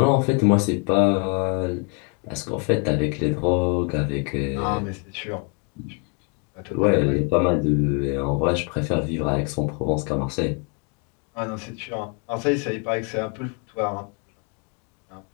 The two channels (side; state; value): right; quieter; 36.8 dB